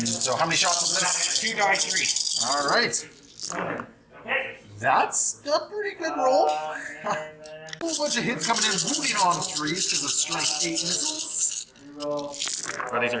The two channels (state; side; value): identical; both; correlation 1.00